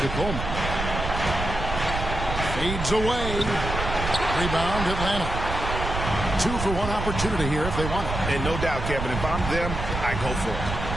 Coleman. Fades away. Rebound Atlanta. 2 for 1 opportunity here if they want it. And no doubt, Kevin, if I'm them, I go for it.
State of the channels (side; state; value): right; noise; rumble, 5 dB below the sound